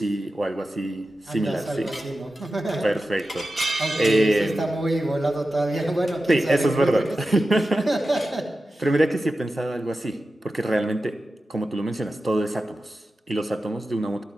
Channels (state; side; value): normal; both; correlation 0.93